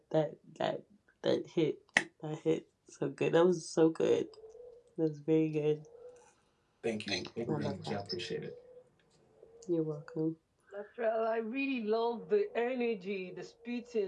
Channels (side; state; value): both; identical; correlation 1.00